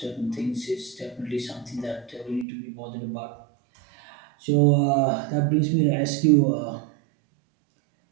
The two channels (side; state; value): left; drops out; at 2.5 s